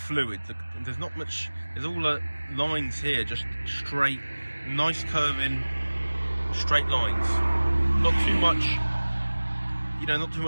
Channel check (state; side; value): inverted; both; correlation -1.00